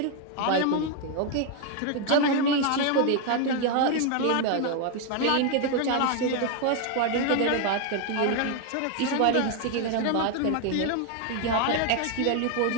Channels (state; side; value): different; both; correlation 0.01